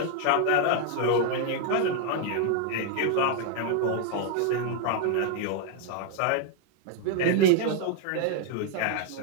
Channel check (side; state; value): both; different; correlation 0.00